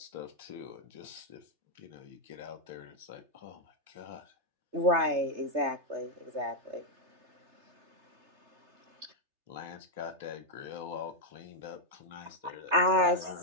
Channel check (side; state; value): left; late; 3.3 ms